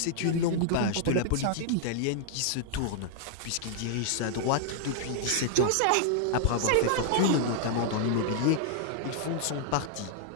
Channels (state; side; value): different; both; correlation -0.01